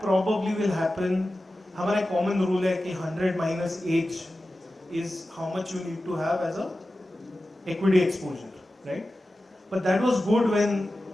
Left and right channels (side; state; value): both; normal; correlation 0.94